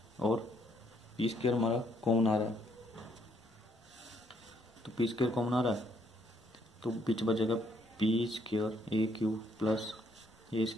और पी स्क्वायर हमारा कॉमन आ रहा है, तो पी स्क्वायर कॉमन आ रहा है तो बीच बचेगा P square A cube plus A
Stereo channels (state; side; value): normal; both; correlation 0.70